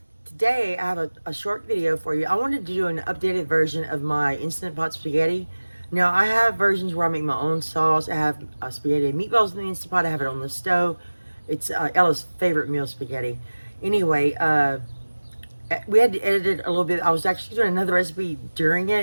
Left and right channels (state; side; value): inverted; both; correlation -1.00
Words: Today, I have a short video for you. I wanted to do an updated version of my Instant Pot spaghetti. Now, I have versions where I make my own sauce. I have spaghetti and meatballs in the Instant Pot. I have it on the stove. It's Ella's favorite meal, spaghetti. Anyway, we had to edit it a little bit. I was actually doing another recipe during